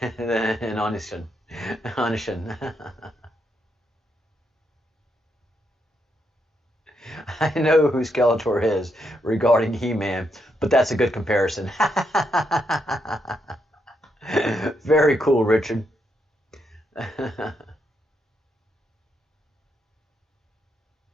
Anishin. I know who Skeletor is regarding He-Man, but that's a good comparison. Very cool, Richard.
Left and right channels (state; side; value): normal; both; correlation 0.79